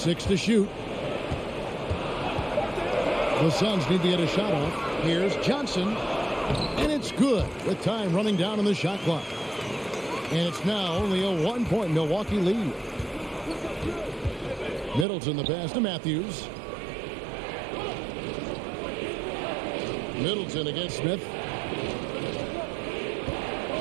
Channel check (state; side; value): drops out; left; at 15.1 s